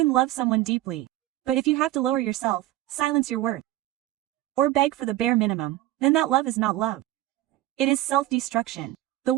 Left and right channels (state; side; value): quieter; left; 15.4 dB